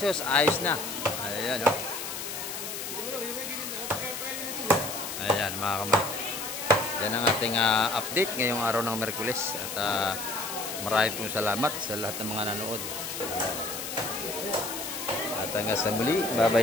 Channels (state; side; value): noise; left; hiss, 6 dB below the sound